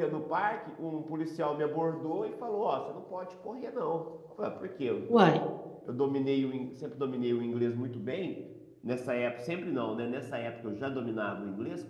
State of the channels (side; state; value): both; identical; correlation 1.00